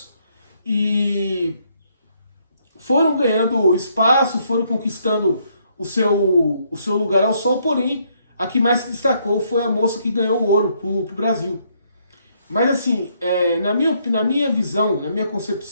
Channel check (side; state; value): both; inverted; correlation -0.71